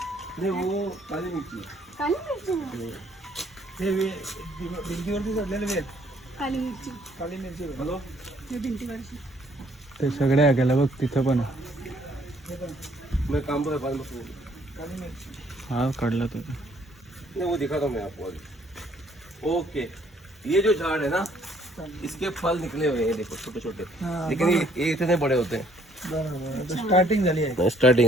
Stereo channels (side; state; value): both; normal; correlation 0.63